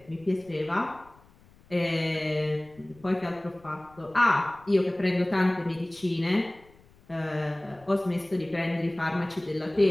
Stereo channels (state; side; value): noise; left; rumble, 27 dB below the sound